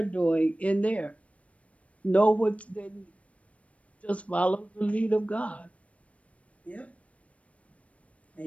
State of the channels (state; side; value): late; right; 0.064 ms